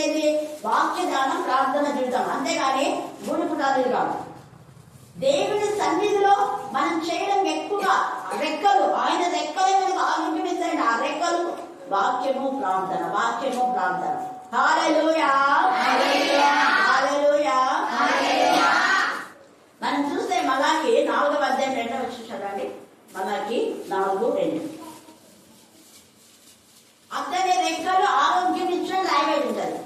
ఏంటి? వాక్య ధ్యానం, ప్రార్థన జీవితం, అంతేగాని గుడి పుటాలు కాదు. దేవుని సన్నిధిలో మనం చేయడం ఎక్కువగా రెక్కలు, ఆయన రెక్కలే మనకు ఆరోగ్యం. ఆ రెక్కలు వాక్యము ప్రార్థన, వాక్యము ప్రార్థన. హల్లెలూయా, హల్లెలూయా, హల్లెలూయా. మనం చూస్తే మలాకి 4వ అధ్యాయం 2వ వచనం చదవండి. మలాకి 4:2. అతని రెక్కలు ఆరోగ్యం ఇచ్చిన రాయబడి ఉంటుంది.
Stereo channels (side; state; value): both; identical; correlation 1.00